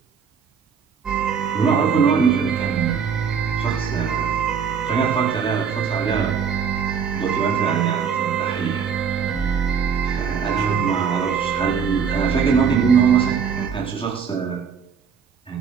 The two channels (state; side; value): quieter; left; 6.7 dB